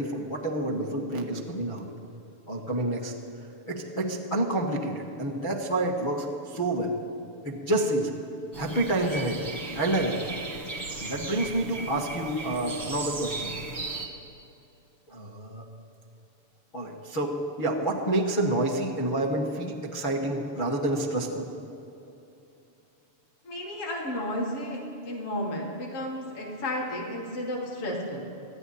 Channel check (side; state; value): right; late; 7.0 ms